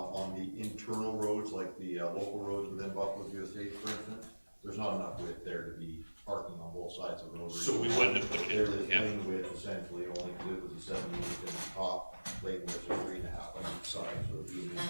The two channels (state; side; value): inverted; both; correlation -1.00